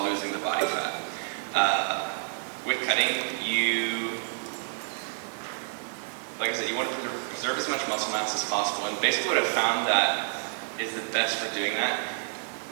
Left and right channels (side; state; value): left; silent; 56 dB below the other